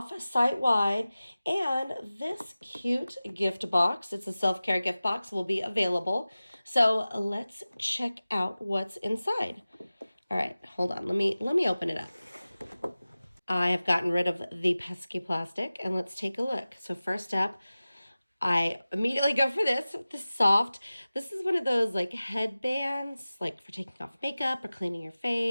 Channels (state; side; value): inverted; both; correlation -0.97